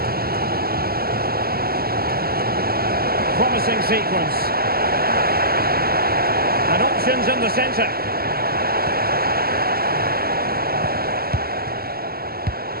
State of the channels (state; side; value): late; left; 0.45 ms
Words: Promising sequence. And options in the centre.